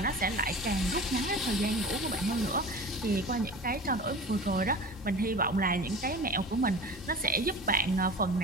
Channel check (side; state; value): both; normal; correlation 0.36